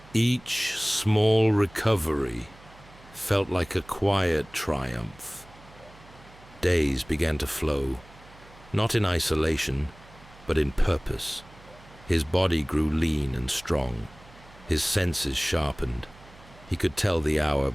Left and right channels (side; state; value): right; noise; hum, 23 dB below the sound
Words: Each small recovery felt like a quiet triumph. Days began to flow, not in isolation, but in purpose. His body grew lean and strong. his senses sharpened. He could tell the hour